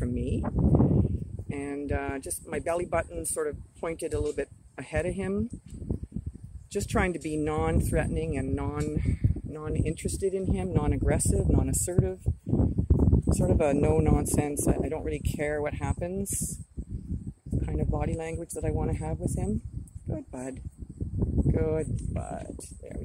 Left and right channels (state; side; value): identical; both; correlation 1.00